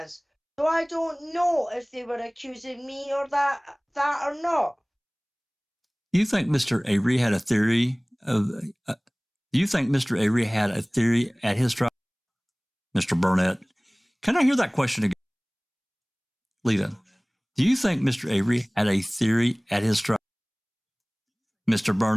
So I don't know if they were accusing me or that or not. Do you think Mr. Avery had a theory of... do you think Mr. Avery had a theory at his trial? Mr. Burnett, can I hear that question again? Lita, do you think Mr. Avery had a theory at his trial? Mr.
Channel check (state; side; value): identical; both; correlation 1.00